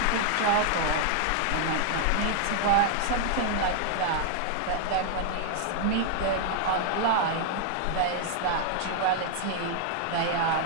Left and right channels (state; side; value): different; both; correlation 0.00